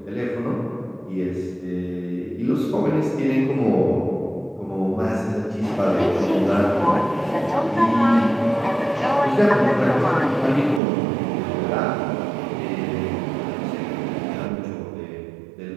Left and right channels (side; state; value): left; drops out; at 10.8 s